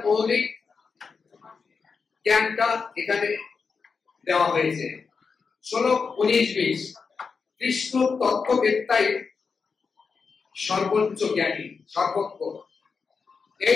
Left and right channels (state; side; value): quieter; right; 5.2 dB